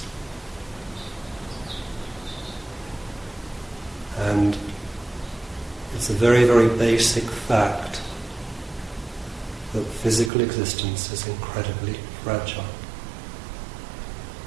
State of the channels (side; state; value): left; drops out; at 10.3 s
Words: And it's a very, very basic fact that physical existence is incredibly fragile.